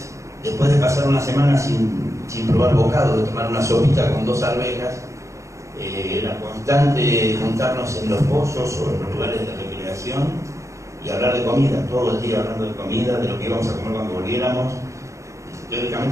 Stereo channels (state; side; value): late; left; 0.15 ms